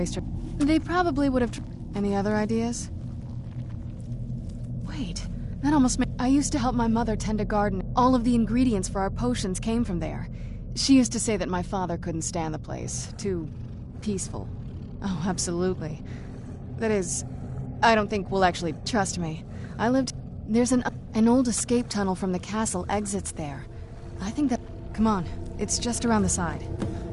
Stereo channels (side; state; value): both; identical; correlation 1.00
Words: her... They probably would have... Any other ideas? Wait, that almost made... I used to help my mother tend a garden. All of the ingredients for our potions came from there. She used to say that my father couldn't stand the place. Too... peaceful. Oh, absolutely. That is... I don't think we'll actually... Trust me. I lived... There's an old escape tunnel from the castle exits there. I think that... Come on. It's just around the side.